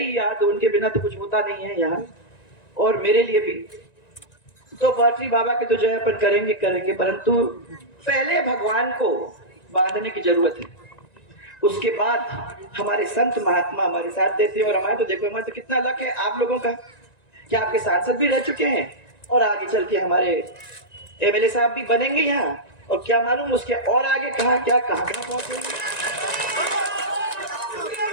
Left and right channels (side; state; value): right; late; 1.9 ms